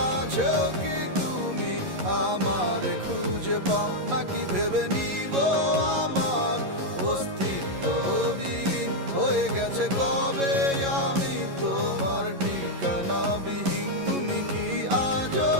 কি তুমি আমার খুঁজে পাও, নাকি ভেবে নিব আমার অস্তিত্ব বিলীন হয়ে গেছে কবে আমি তোমার ঠিকানা বিহীন?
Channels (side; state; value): left; late; 11 ms